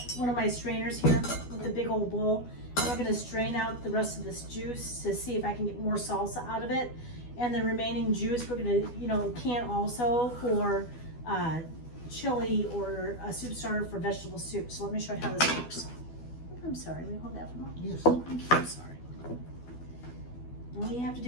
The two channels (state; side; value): late; right; 12 ms